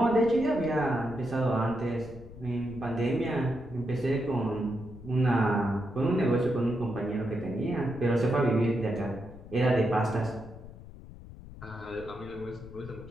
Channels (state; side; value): noise; left; rumble, 16 dB below the sound